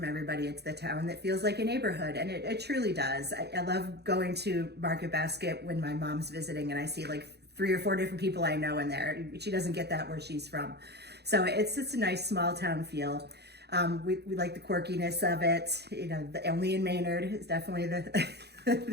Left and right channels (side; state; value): left; late; 0.48 ms